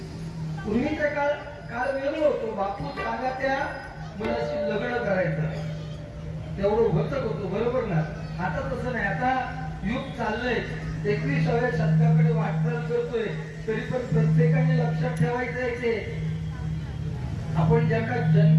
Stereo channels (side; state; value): both; identical; correlation 1.00